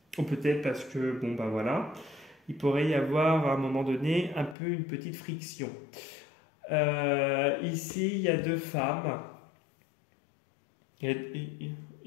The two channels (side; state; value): right; drops out; at 4.5 s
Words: ou peut-être parce que, voilà, il pourrait y avoir à un moment donné un peu une petite friction. Ici, il y a deux femmes. Il